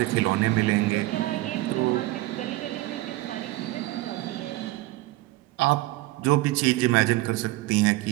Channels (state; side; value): quieter; left; 18.5 dB